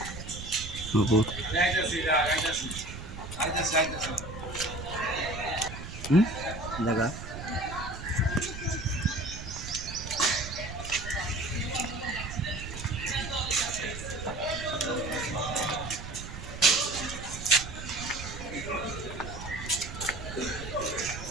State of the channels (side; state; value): right; noise; rumble, 9 dB below the sound